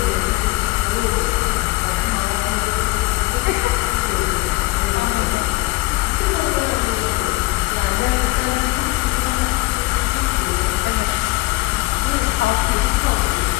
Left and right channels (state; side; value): quieter; right; 21.1 dB